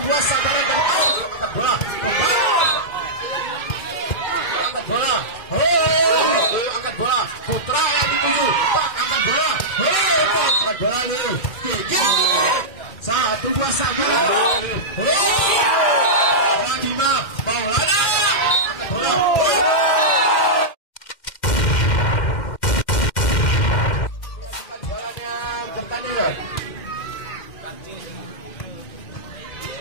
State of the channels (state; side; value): late; right; 2.1 ms